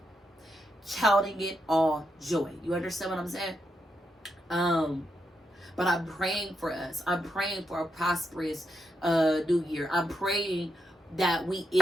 Counting it all joy. You understand what I'm saying? But I'm praying for us. I'm praying for a prosperous new year. I'm praying that we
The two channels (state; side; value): normal; both; correlation 0.83